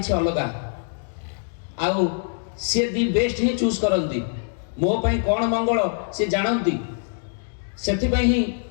अलग आउ सी दि बेस्ट ही चूज करती मो पाई कौन मंगल सी जानती से ही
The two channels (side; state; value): right; silent; digital silence